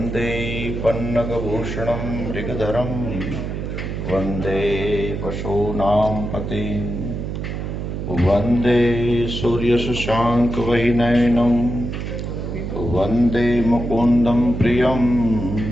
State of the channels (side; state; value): right; noise; hum, 5 dB below the sound